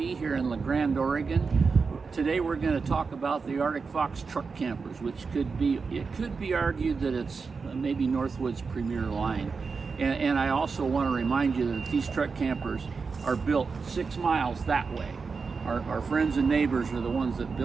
here in La Grande, Oregon. Today we're going to talk about the Arctic Fox truck campers, which could be argued that it's maybe Northwood's premier line. And I also want to remind you that these truck campers are built 6 miles that way. Our friends and neighbors are the ones that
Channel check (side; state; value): left; quieter; 4.9 dB